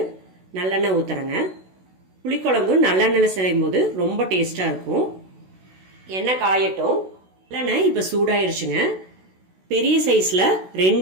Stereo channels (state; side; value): late; left; 16 ms